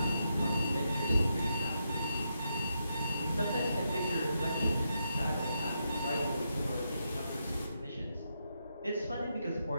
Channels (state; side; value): inverted; both; correlation -0.82